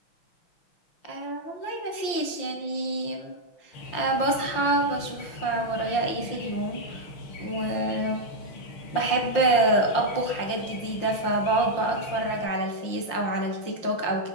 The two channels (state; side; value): late; right; 5.8 ms